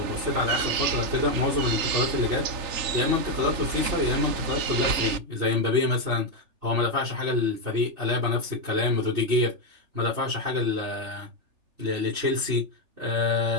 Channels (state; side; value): late; left; 3.4 ms